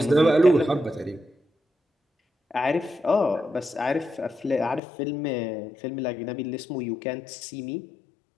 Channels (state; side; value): drops out; right; at 4.8 s